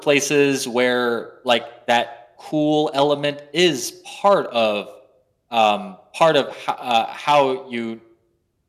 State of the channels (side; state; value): both; identical; correlation 1.00